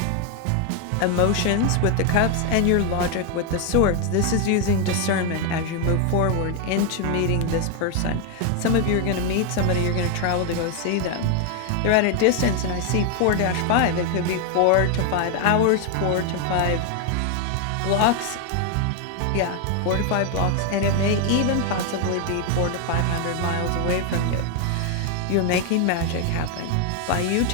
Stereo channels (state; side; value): different; both; correlation 0.01